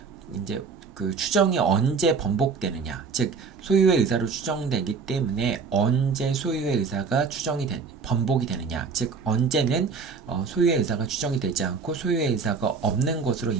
이제 그 추정이 언제 번복되느냐, 즉 소유의 의사로 추정되기 때문에 언제 소유의 의사가 번복이 되느냐, 즉 언제는 소유의 의사가 추정이 되지 않고 소유의 의사가 없는 것으로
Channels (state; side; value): quieter; left; 5.1 dB